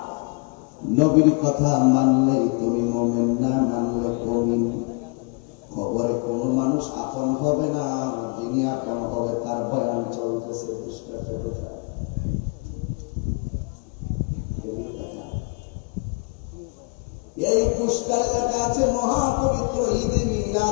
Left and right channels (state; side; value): quieter; right; 32.5 dB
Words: নবীর কথা মানলে তুমি মুমিন, না মানলে মুমিন। খবরে কোন মানুষ আপন হবে না, যিনি আপন হবে তার বয়ান চলতেছে। এই পুস্টার লেখা আছে মহাপবিত্র ঈদে